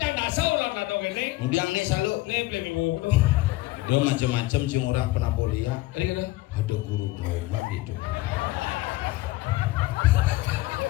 dan dasar lah lah dong ini. Kemudian nih selalu. Nih pelenggu. Dia macam-macam sih orang pernah boleh ya. Tadi kata. Ada guru drama gitu.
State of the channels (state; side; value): quieter; right; 18.5 dB